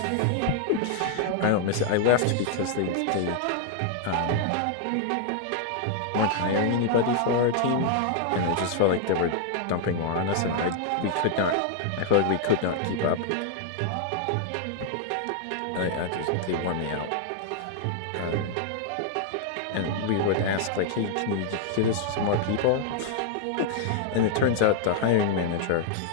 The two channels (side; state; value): both; different; correlation 0.00